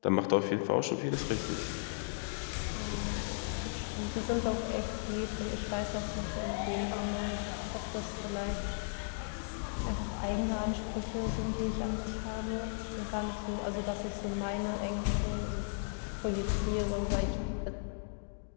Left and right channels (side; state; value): right; silent; digital silence